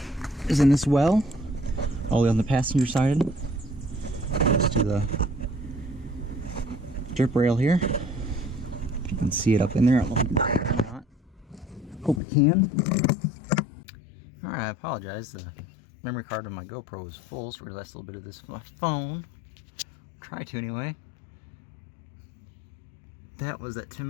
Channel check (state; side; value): drops out; right; at 12.2 s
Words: is in this well, all the way on the passenger side. Goes to the drip rail here. If you can see it up in there, I don't know if you can or not. Hope you can. Alright, I apologize. The memory card on my GoPro is full, so we're going to last a little bit of this from my phone. Try to anyway. That was that